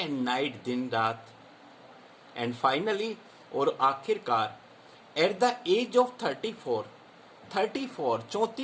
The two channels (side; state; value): both; identical; correlation 1.00